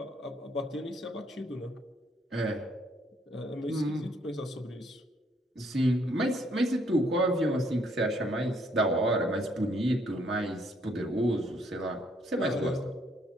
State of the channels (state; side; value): normal; both; correlation 0.68